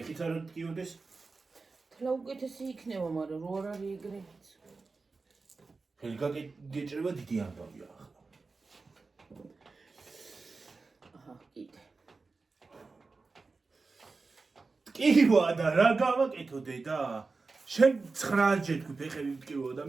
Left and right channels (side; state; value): left; quieter; 4.1 dB